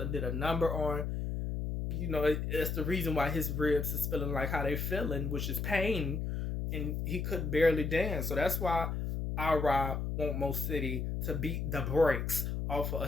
a number on, it's the reason why his ribs is feeling like how they feeling, which is pain, and he could barely dance. So that's why Alright want Mo City to beat the brakes off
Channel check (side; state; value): left; noise; hum, 2 dB below the sound